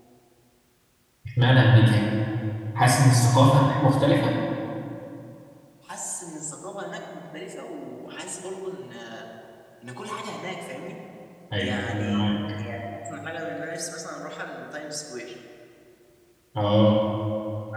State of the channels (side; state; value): both; identical; correlation 1.00